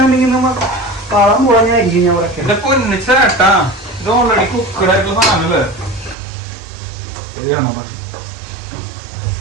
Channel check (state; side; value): drops out; left; at 6.2 s